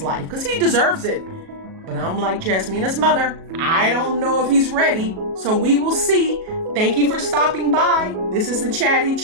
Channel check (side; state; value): left; late; 37 ms